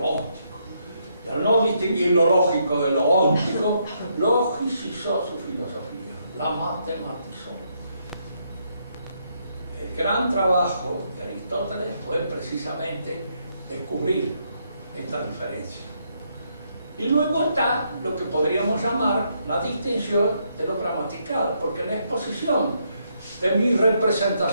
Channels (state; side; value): inverted; both; correlation -0.76